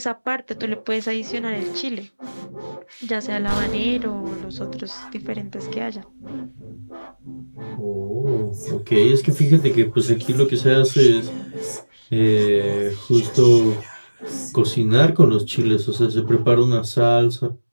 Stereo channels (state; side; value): inverted; both; correlation -1.00